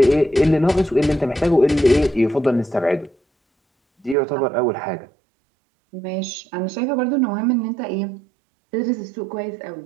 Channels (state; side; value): drops out; left; at 4.2 s